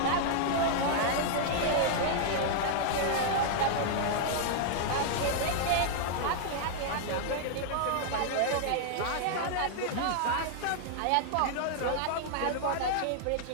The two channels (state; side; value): different; both; correlation -0.01